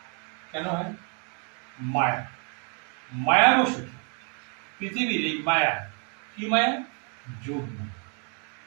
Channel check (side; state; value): left; quieter; 38.9 dB